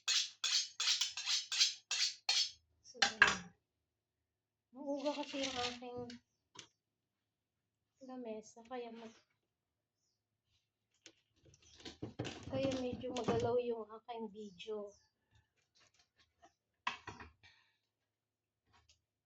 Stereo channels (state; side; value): identical; both; correlation 1.00